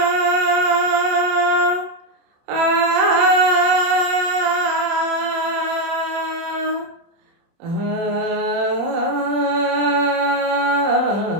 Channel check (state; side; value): late; left; 30 ms